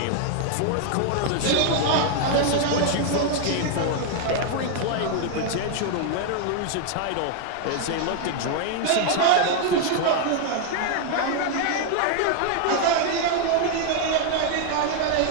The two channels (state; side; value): different; both; correlation 0.00